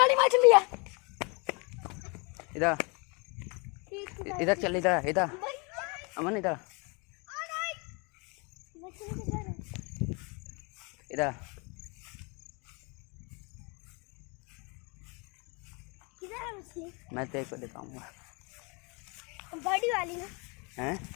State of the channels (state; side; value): quieter; right; 31.5 dB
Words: मछली है। इधर इधर चल, इधर इधर अमन, इधर इधर। मैं तेरे को दिखाऊंगा। बड़ी वाली ना हैं?